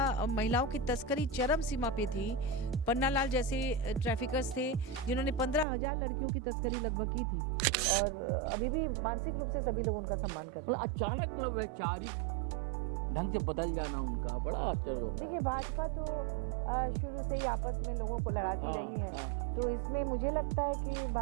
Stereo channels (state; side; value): drops out; left; at 5.7 s